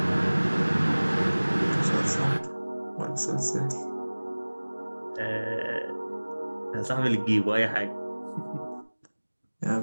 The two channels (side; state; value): both; inverted; correlation -1.00